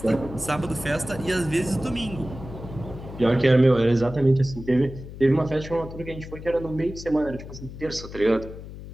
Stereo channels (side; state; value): left; noise; hum, 13 dB below the sound